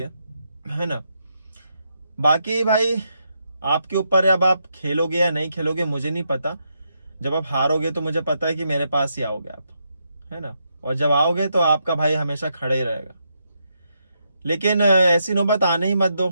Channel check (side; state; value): both; inverted; correlation -0.80